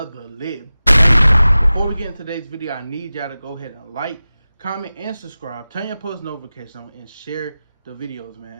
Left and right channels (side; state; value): both; inverted; correlation -0.96